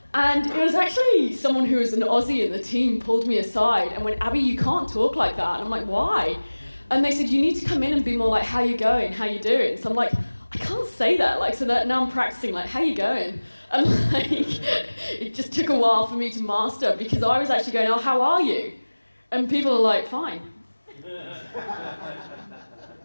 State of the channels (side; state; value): both; inverted; correlation -1.00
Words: And it was actually someone who was an Aussie in the team pulled me aside and went, Abbie, you can't talk like that. And I'm like, why? And they said, you need to come in and be more like, how you going, how you doing? So I'm like, I can't say that. Like, so that now I'm practicing, like, how you going? And like, it just took a while for me to master, because I was actually going, oh, how are you? And people are like, fine.